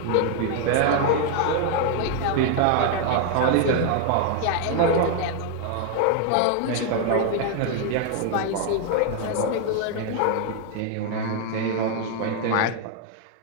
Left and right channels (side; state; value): both; different; correlation 0.00